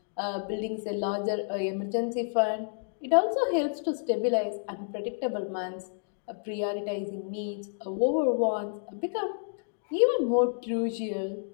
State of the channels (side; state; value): right; silent; digital silence